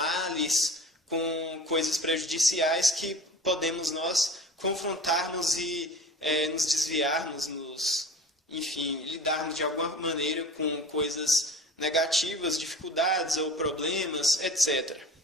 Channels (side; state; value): both; normal; correlation 0.39